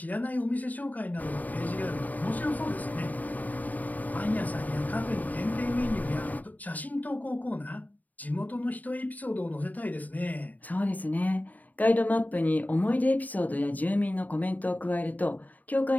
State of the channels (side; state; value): right; late; 0.079 ms